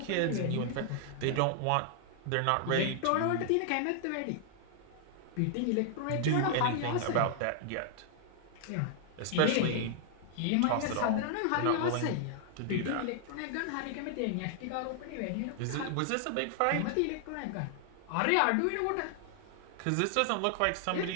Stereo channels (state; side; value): different; both; correlation -0.01